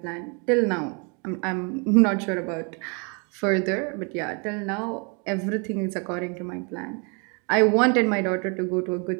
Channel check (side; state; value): left; quieter; 34.2 dB